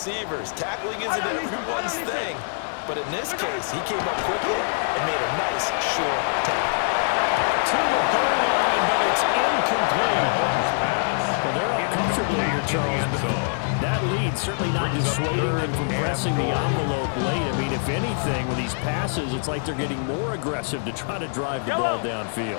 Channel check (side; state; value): right; silent; digital silence